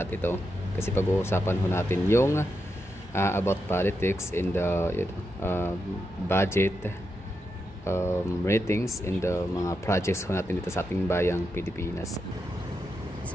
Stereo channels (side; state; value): both; normal; correlation 0.86